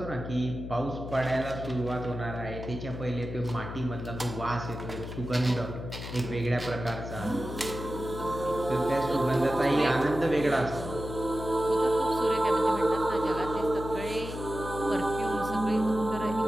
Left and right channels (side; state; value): left; noise; hum, 8 dB below the sound